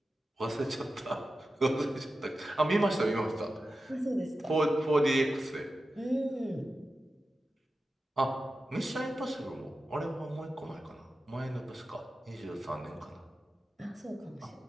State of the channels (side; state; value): both; normal; correlation 0.92